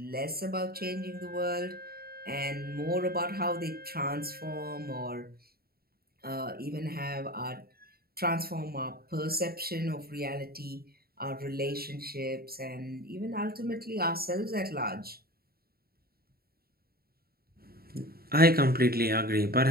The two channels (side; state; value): left; late; 0.44 ms